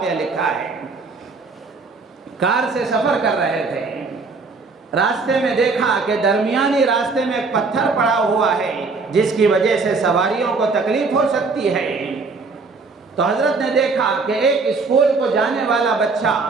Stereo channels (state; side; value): quieter; left; 4.2 dB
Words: لکھا ہے۔ کار سے سفر کر رہے تھے، راستے میں دیکھا کہ درمیانی راستے میں ایک پتھر پڑا ہوا ہے جس کی وجہ سے سواریوں کو تکلیف ہو سکتی ہے۔ تو حضرت نے دیکھا کہ ایک اسکول کو جانے والا بچہ